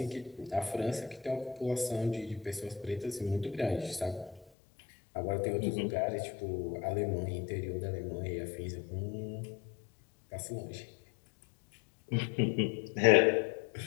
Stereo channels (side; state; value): right; drops out; at 4.5 s